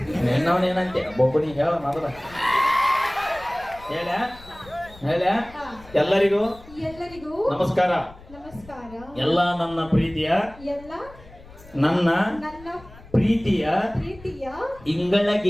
ಏನಂತೆ ಒಬ್ಬನಿ ಹೇಳ ಮೊದಲ ಹೇಳ ಹೇಳ ಎಲ್ಲರಿಗೂ ಎಲ್ಲರಿಗೂ ನಮಸ್ಕಾರ ನಮಸ್ಕಾರ ಎಲ್ಲ ನನ್ನ ಪ್ರೀತಿಯ ಎಲ್ಲ ನನ್ನ ನನ್ನ ಪ್ರೀತಿಯ ಪ್ರೀತಿಯ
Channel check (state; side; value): noise; left; rumble, 21 dB below the sound